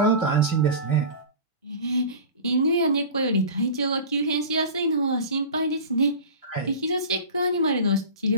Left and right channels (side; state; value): both; inverted; correlation -0.34